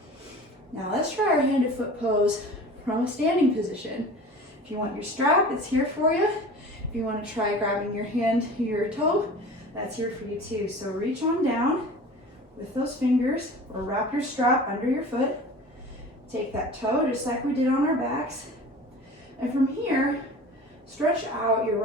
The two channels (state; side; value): normal; both; correlation 0.39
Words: Now let's try our handed foot pose from a standing position. If you want your strap, it's here for you. If you want to try grabbing your hand to your toe, that's here for you too. So reach on down with those fingers or wrap your strap under your foot. Take that toe just like we did on our backs. And from here, Stretch out your